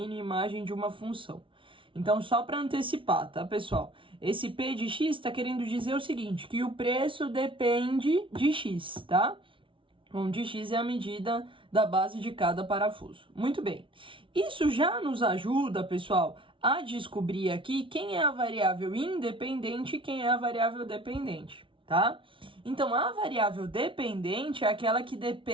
e imagem de uma função. Então, só para antecipar, tá, pessoal? Esse P de X está querendo dizer o seguinte, que o preço depende de X, tá? Onde X é a medida da base de cada parafuso. Muito bem. Isso já nos ajuda, pessoal, a descobrir aqui quem é a variável independente e quem é a variável dependente, tá? Então, a variável dependente é aquela que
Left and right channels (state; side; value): late; left; 0.25 ms